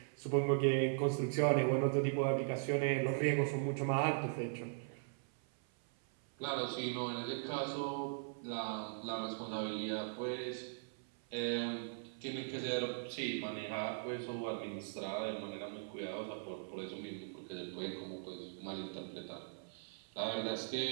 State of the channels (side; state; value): left; silent; 51 dB below the other